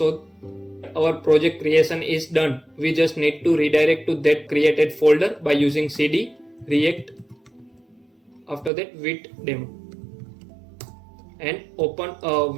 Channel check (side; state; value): left; drops out; at 8.7 s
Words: our project creation is done. We just need to redirect to that created folder by using cd react after that Vite demo. And open